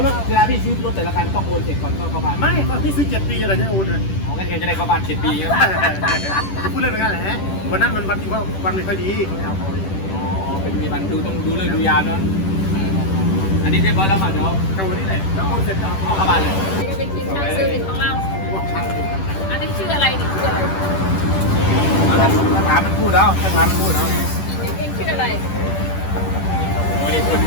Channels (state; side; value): late; right; 10 ms